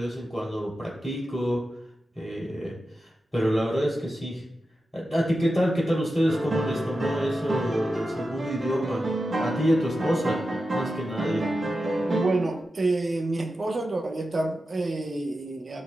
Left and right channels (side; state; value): both; normal; correlation 0.91